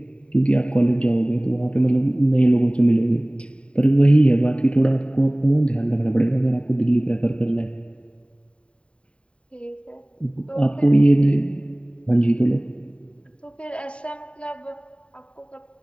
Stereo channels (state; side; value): late; right; 0.059 ms